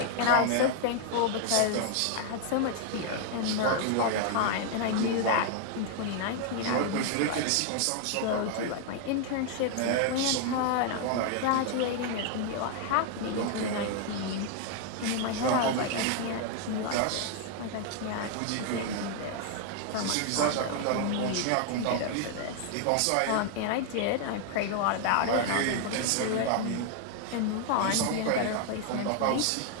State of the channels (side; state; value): both; different; correlation 0.00